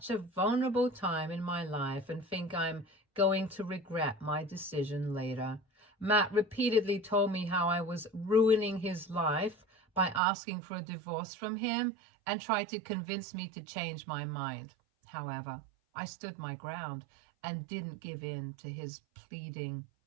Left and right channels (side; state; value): left; drops out; at 10.2 s